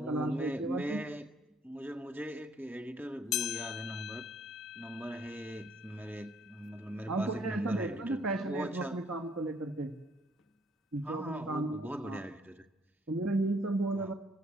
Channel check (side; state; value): both; normal; correlation 0.64